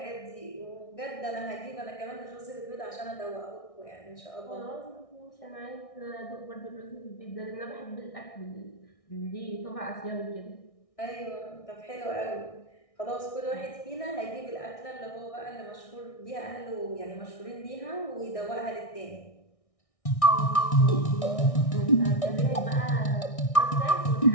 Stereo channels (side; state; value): right; late; 1.6 ms